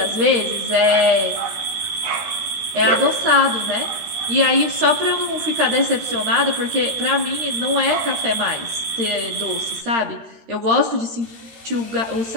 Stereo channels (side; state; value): left; late; 13 ms